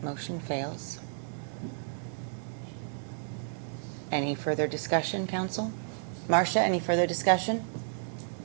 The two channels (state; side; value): silent; left; digital silence